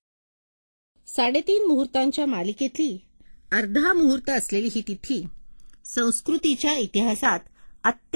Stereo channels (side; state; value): both; inverted; correlation -1.00